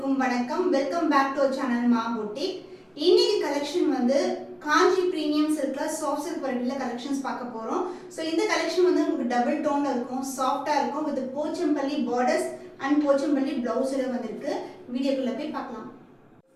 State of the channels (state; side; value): identical; both; correlation 1.00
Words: அனைவருக்கும் வணக்கம். Welcome back to channel மா boutique. இன்னைக்கு கலெக்ஷன் வந்து காஞ்சி பிரீமியம் சில்க்ல சாஃப்ட் சில்க் வெரைட்டில கலெக்ஷன்ஸ் பார்க்க போறோம். சோ இந்த கலெக்ஷன் வந்து உங்களுக்கு டபுள் டோன்ல இருக்கும், சாஃப்ட்டா இருக்கும் with Pochampally borders and Pochampally பிளவுஸ்ல வந்திருக்கு. வீடியோக்குள்ள போய் பார்க்கலாம்.